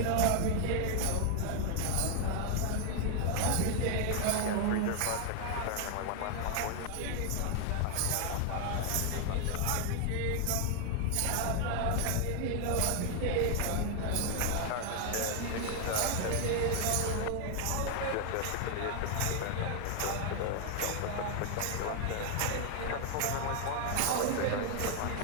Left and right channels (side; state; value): both; different; correlation 0.00